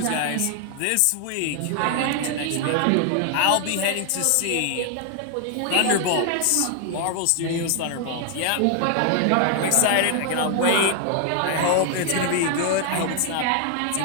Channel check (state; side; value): different; both; correlation 0.00